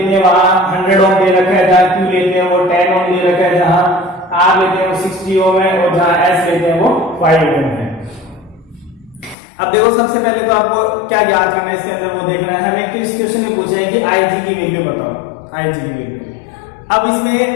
हैं वहां 100 ओम दे रखा है, जहां Q लेते हैं वो 10 ओम दे रखा है, जहां R लेते हैं वो 60 ओम है, और जहां S लेते हैं वो 5 ओम है। अब देखो सबसे पहले तो आपको क्या ज्ञात करना है इसके अंदर वो देखना है। हमें किस क्वेश्चन में पूछा है कि IG की वैल्यू बताओ, IG की वैल्यू। अब इसमें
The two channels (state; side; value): drops out; right; at 9.3 s